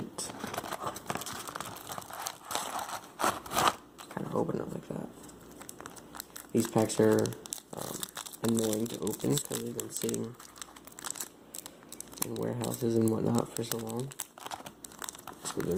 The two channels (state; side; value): identical; both; correlation 1.00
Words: Kind of open it like that. These packs are annoying to open because they've been sitting in warehouses and whatnot for so long. So they're